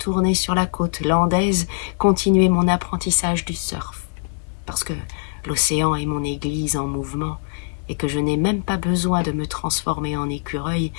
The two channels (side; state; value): right; silent; digital silence